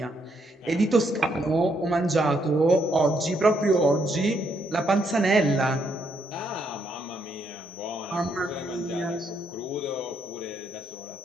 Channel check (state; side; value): normal; both; correlation 0.75